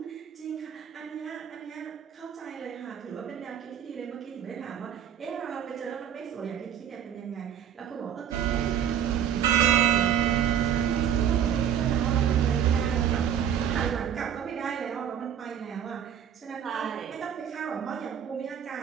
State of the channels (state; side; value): quieter; left; 9.2 dB